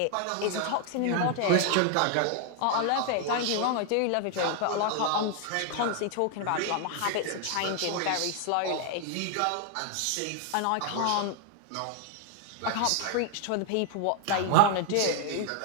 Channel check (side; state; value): both; different; correlation 0.00